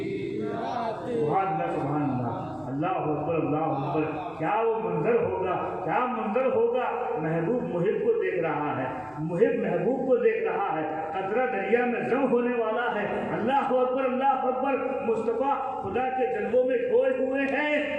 رات ہے۔ سبحان اللہ، اللہ اکبر، اللہ اکبر۔ کیا وہ منظر ہوگا، کیا منظر ہوگا۔ محبوب محب کو دیکھ رہا ہے، محب محبوب کو دیکھ رہا ہے، قطرہ دریا میں جم ہونے والا ہے۔ اللہ اکبر، اللہ اکبر۔ مصطفیٰ خدا کے جلووں میں کھوئے ہوئے ہیں،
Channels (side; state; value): right; noise; hum, 26 dB below the sound